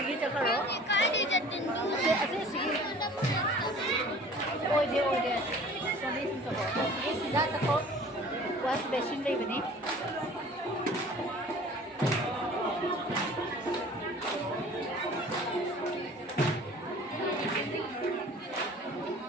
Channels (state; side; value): normal; both; correlation 0.47